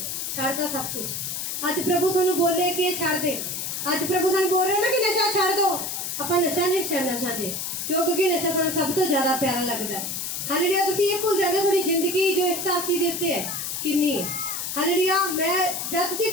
छड़ता सब कुछ। आज प्रभु तुहानू बोले कि ये छड़ दे, आज प्रभु तुहानू बोल रहे ना कि नशा छड़ दो। ਆਪਾਂ नशा नहीं छड़ना चाहते क्योंकि नशा सानू सब तो ज्यादा प्यारा लगता है। हालेलुया। तुसीं ये भूल जाते थोड़ी जिंदगी जो इस धरती के उत्ते है कितनी है। हालेलुया। मैं जब तुसीं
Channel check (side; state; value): left; noise; hiss, 4 dB below the sound